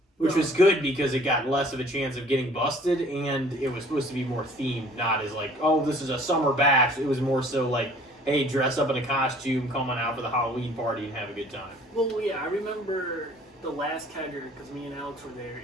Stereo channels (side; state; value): both; normal; correlation 0.53